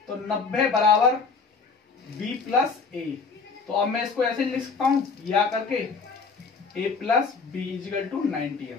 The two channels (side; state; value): right; quieter; 4.8 dB